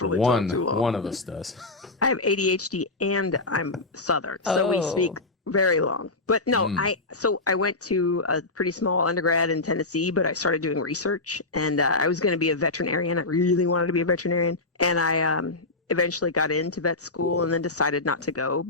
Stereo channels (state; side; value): quieter; right; 3.2 dB